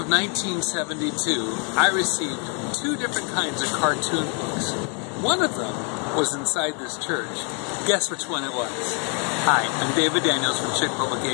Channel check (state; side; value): quieter; right; 37.3 dB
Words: 1972, I received 2 different kinds of cartoon books. One of them was inside this church. Guess which one it was? Hi, I'm David Daniels from Chick